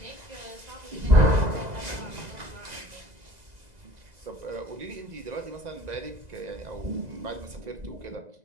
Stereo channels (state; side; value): late; left; 2.0 ms